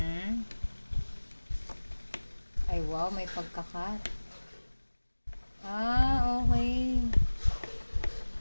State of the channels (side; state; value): both; inverted; correlation -1.00